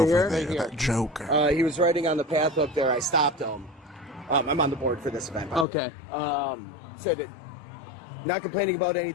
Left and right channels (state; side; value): drops out; right; at 5.7 s